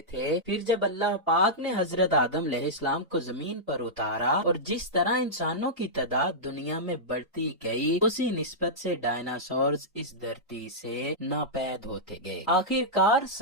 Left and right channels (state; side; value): normal; both; correlation -0.11